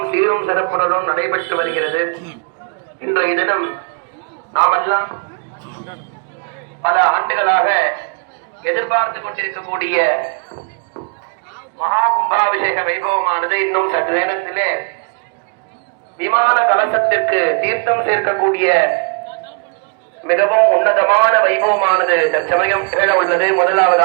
சீரும் சிறப்புடனும் நடைபெற்று வருகிறது. இன்றைய தினம் நாமெல்லாம் பல ஆண்டுகளாக எதிர்பார்த்து கொண்டிருக்கக்கூடிய மகா கும்பாபிஷேக வைபவமானது இன்னும் சற்று நேரத்திலே விமான கலசத்திற்கு தீர்த்தம் சேர்க்கக்கூடிய மிகவும் உன்னதமான வைபவமானது தற்சமயம் நிகழ உள்ளது.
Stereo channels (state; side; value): quieter; left; 37.4 dB